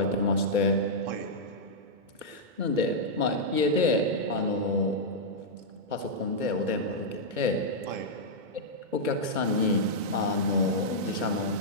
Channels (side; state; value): left; late; 2.2 ms